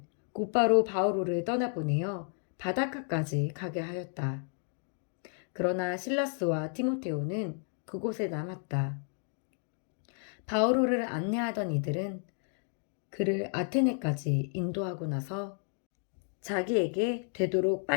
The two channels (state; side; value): silent; right; 56 dB below the other